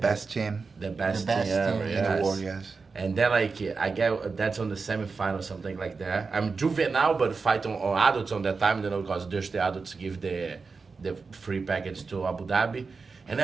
team The best, best thing ever, team in yes. the world, yes. And then like I get that's on the semifinal, something like that. I'm juvenile, but fight on adults on that time, you know, because there's the adults give the free package to Abu Dhabi. And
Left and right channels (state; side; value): quieter; left; 4.6 dB